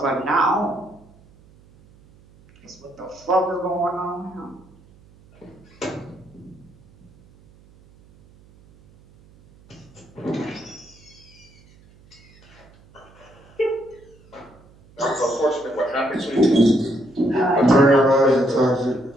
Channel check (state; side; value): noise; right; hum, 27 dB below the sound